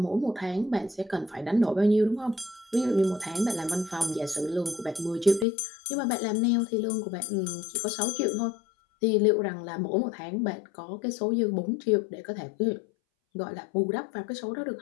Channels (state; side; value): drops out; right; at 5.5 s